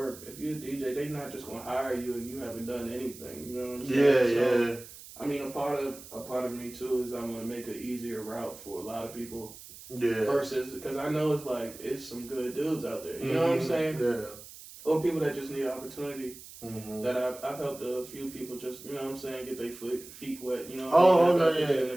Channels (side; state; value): right; noise; hiss, 16 dB below the sound